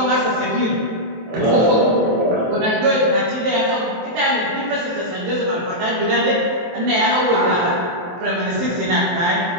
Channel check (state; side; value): late; left; 23 ms